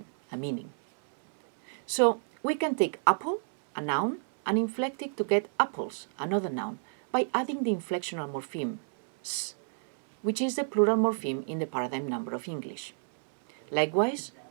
a meaning. So we can take apple, a noun, and inflect it to get apples, another noun, by adding the inflectional morpheme s, which is the plural morpheme in the paradigm number of English. Likewise,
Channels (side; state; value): left; silent; 58 dB below the other